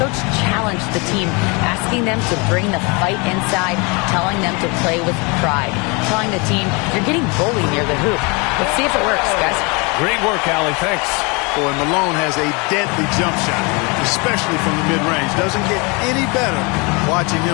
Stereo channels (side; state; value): right; quieter; 29.4 dB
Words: challenged the team, asking them to bring the fight inside, telling them to play with pride, telling the team, you're getting bullied near the hoop. Let's see if it works, guys. Great work, Allie. Thanks. Boy, Malone has a deadly jump shot, especially from the mid-range. Doesn't get any better watching